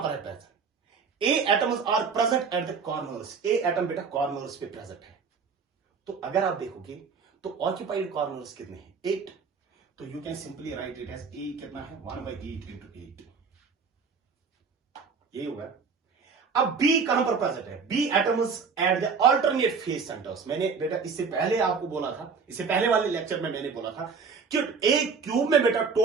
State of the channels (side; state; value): left; quieter; 5.5 dB